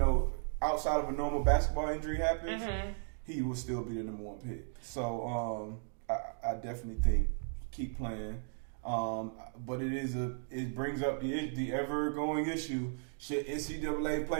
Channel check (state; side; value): silent; left; digital silence